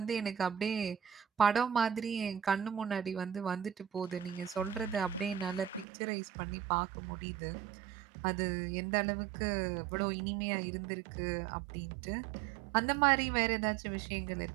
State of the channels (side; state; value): left; drops out; at 5.9 s